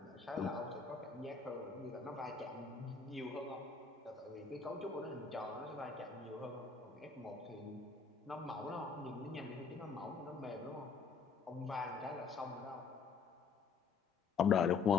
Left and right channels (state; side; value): quieter; right; 5.4 dB